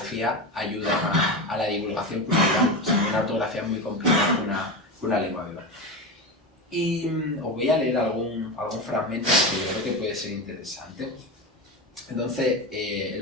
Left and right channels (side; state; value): both; normal; correlation 0.20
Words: ayudan a la divulgación cultural. O sea, una ortografía es muy complicada que una lengua viva. Y os voy a leer algún fragmento que yo creo que puede ser interesante. Entonces,